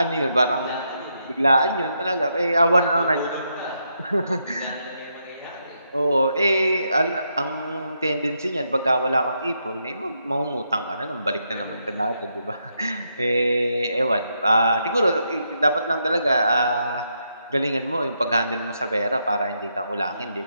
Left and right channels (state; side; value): inverted; both; correlation -0.80